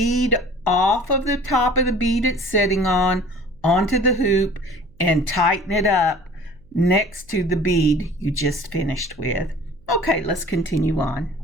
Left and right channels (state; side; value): noise; right; hum, 28 dB below the sound